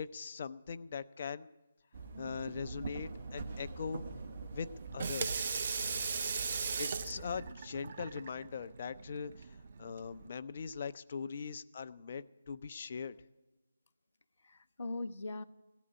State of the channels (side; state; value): both; inverted; correlation -0.77